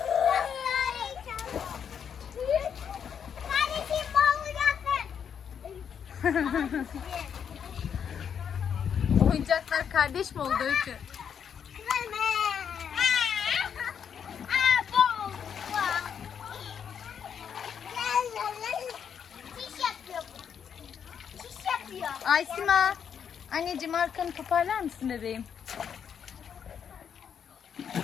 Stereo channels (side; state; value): right; quieter; 7.7 dB